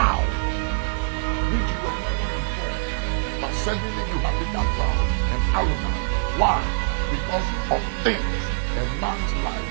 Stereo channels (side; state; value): left; silent; digital silence